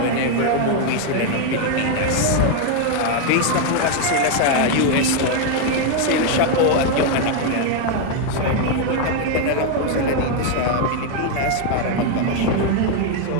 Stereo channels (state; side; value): different; both; correlation 0.01